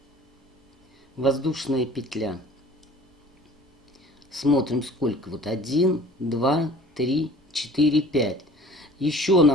воздушная петля. Смотрим, сколько. Вот 1, 2, 3, 4, 5. Еще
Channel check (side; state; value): both; normal; correlation 0.48